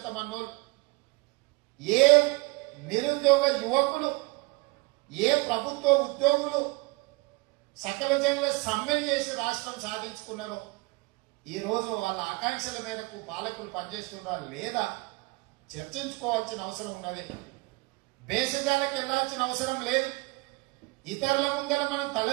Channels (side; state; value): left; quieter; 25.7 dB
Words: ఏ నిరుద్యోగ యువకులు, ఏ ప్రభుత్వ ఉద్యోగులు సకల జనుల సమ్మెను చేసి రాష్ట్రం సాధించుకున్నారో ఈరోజు వాళ్ళ ఆకాంక్షల మేరకు పాలకులు పనిచేస్తున్నారా లేదా చర్చించుకోవాల్సిన అవసరం ఉన్నది. బేసిజాలకు వెళ్లాల్సిన అవసరం లేదు. ఇతరుల ముందర మనం